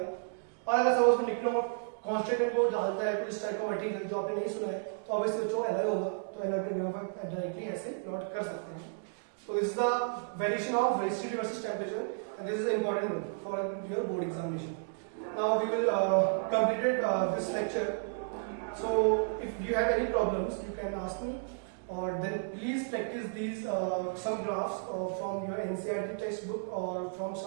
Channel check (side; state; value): left; silent; digital silence